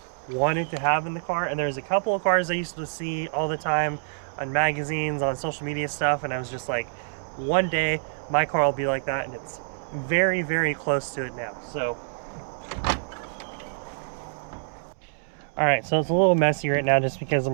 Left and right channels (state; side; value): silent; left; digital silence